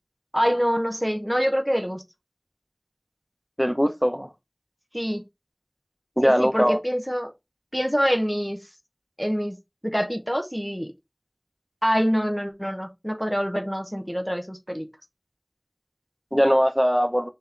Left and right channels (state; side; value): identical; both; correlation 1.00